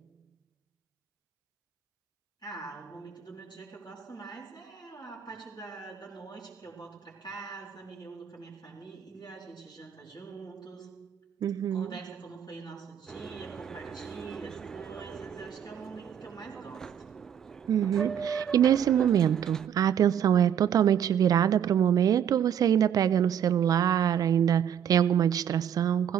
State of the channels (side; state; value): left; quieter; 8.9 dB